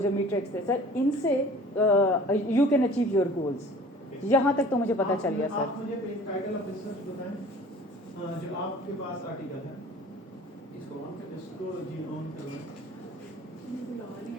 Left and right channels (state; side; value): normal; both; correlation 0.47